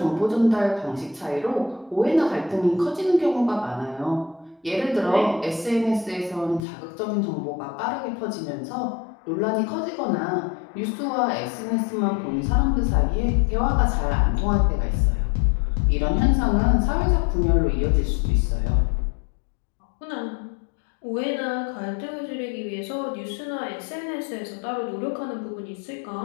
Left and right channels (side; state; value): right; drops out; at 6.6 s